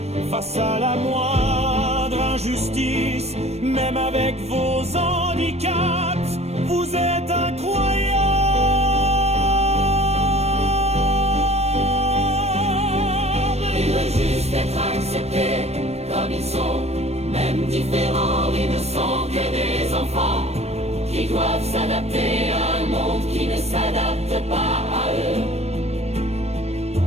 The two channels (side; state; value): left; late; 0.31 ms